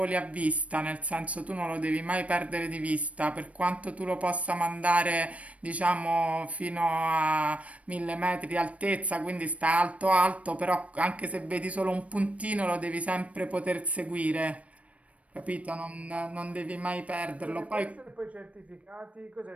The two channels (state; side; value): late; left; 0.065 ms